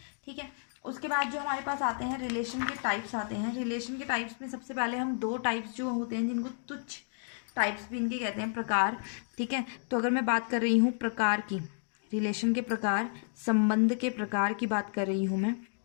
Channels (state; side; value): silent; right; 57 dB below the other